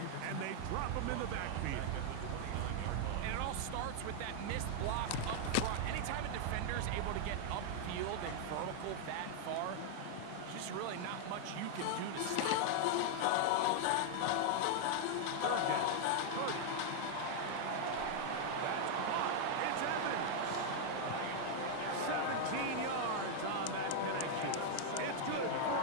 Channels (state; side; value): different; both; correlation 0.00